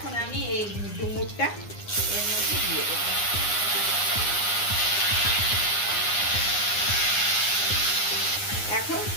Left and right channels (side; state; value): right; late; 9.8 ms